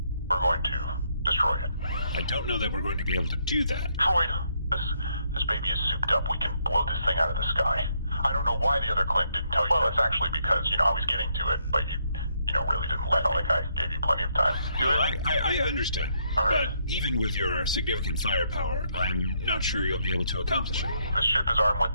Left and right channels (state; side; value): inverted; both; correlation -0.74